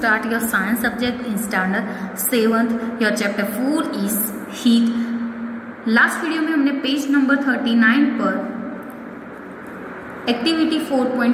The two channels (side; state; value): both; identical; correlation 1.00